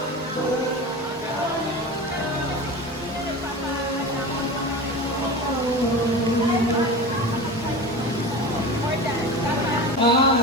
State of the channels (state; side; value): normal; both; correlation 0.30